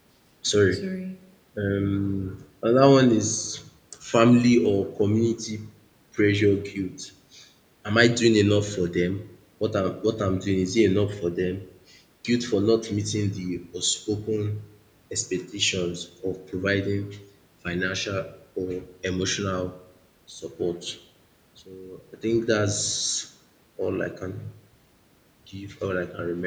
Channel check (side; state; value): both; identical; correlation 1.00